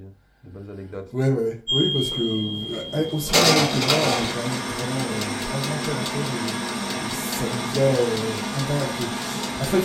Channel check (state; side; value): identical; both; correlation 1.00